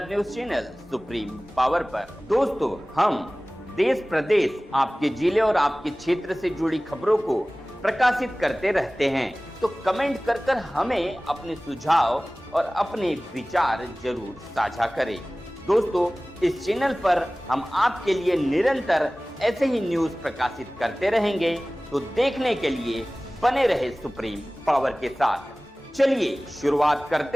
news channel supreme power पर। दोस्तों, हम देश प्रदेश, आपके जिले और आपके क्षेत्र से जुड़ी खबरों को प्रकाशित करते रहते हैं, तो कमेंट कर हमें अपने सुझाव और अपने विचार जरूर साझा करें। दोस्तों, इस चैनल पर हम आपके लिए निरंतर ऐसे ही न्यूज प्रकाशित करते रहेंगे, तो देखने के लिए बने रहे सुप्रीम पावर के साथ। चलिए शुरुआत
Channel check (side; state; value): both; normal; correlation 0.98